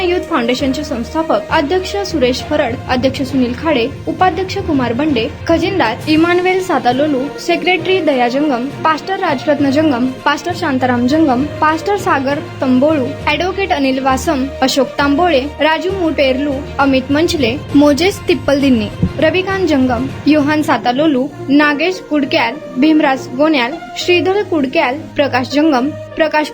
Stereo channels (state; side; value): identical; both; correlation 1.00